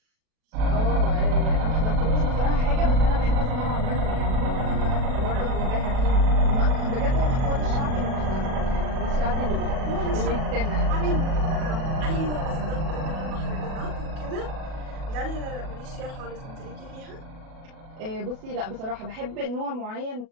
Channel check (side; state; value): left; late; 37 ms